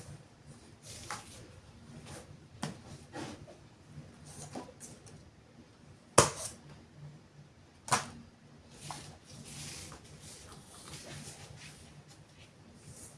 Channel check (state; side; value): identical; both; correlation 1.00